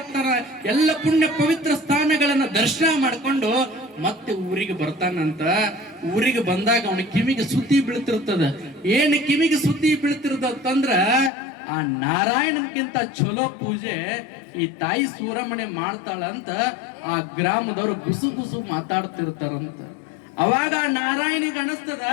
ಎಲ್ಲ ಪುಣ್ಯ ಪವಿತ್ರ ಸ್ಥಾನಗಳನ್ನ ದರ್ಶನ ಮಾಡ್ಕೊಂಡು ಮತ್ತೆ ಊರಿಗೆ ಬರ್ತಾನಂತ. ಊರಿಗೆ ಬಂದಾಗ ಅವನ ಕಿವಿಗೆ ಸುದ್ದಿ ಬೀಳ್ತಿರ್ತದ. ಏನ್ ಕಿವಿಗೆ ಸುದ್ದಿ ಬೀಳ್ತಿರ್ತಂದ್ರ, ಆ ನಾರಾಯಣನ್ಕಿಂತ ಚಲೋ ಪೂಜೆ ಈ ತಾಯಿ ಸೂರಮ್ಮನೆ ಮಾಡ್ತಾಳಂತ ಆ ಗ್ರಾಮದವರು ಗುಸು ಗುಸು ಮಾತಾಡ್ತಿರ್ತಾರಂತ. ಅವಾಗ ಆ ನಾರಾಯಣಿಗೆ ಅನಸ್ತದ,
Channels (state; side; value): drops out; right; at 11.3 s